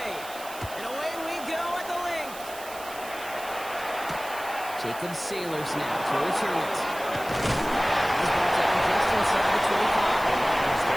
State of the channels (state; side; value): noise; right; hiss, 15 dB below the sound